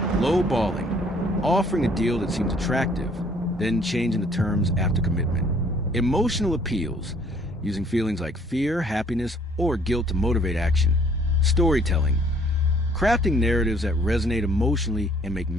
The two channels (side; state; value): both; normal; correlation 0.60